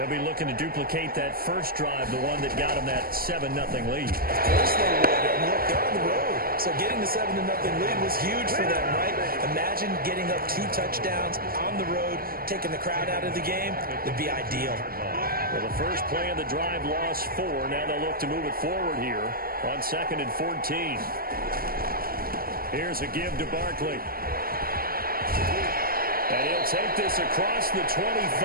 be looking to duplicate that first drive, the one that got them that 7-0 lead. Of course they would. And look, they're on the road. So getting the 7-0 lead was huge for them, right? Imagine getting up 2 touchdowns on the road, taking the crowd out of the game. It'd be ideal. Well, the first play of the drive lost 4. Now they'll look to move it forward here on 2nd and 14. Here's a give to Barkley. And he'll take this across the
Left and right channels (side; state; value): left; late; 0.43 ms